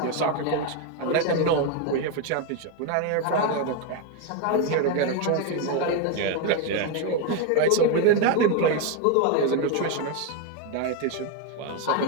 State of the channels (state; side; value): different; both; correlation 0.02